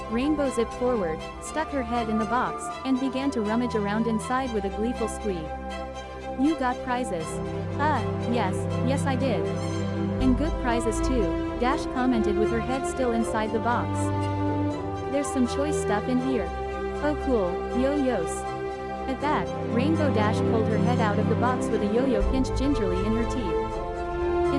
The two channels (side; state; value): both; identical; correlation 1.00